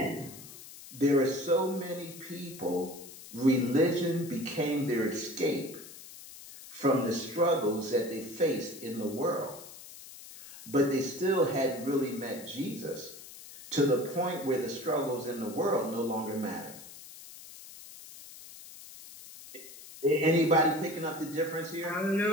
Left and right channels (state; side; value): noise; left; hiss, 16 dB below the sound